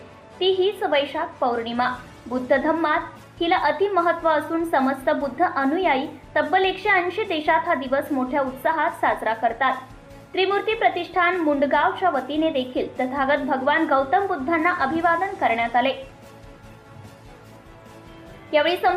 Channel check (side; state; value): both; identical; correlation 1.00